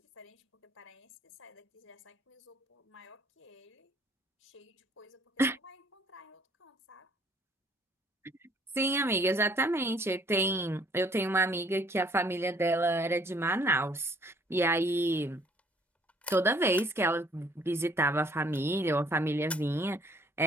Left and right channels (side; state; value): both; normal; correlation 0.60